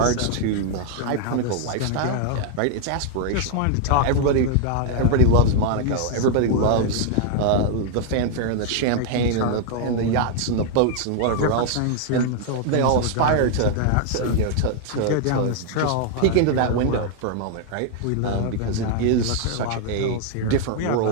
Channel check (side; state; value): both; different; correlation 0.00